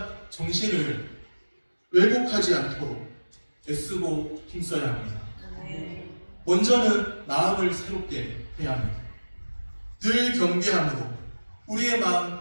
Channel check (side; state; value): both; inverted; correlation -1.00